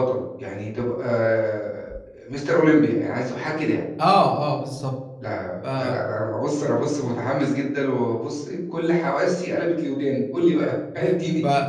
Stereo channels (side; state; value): both; identical; correlation 1.00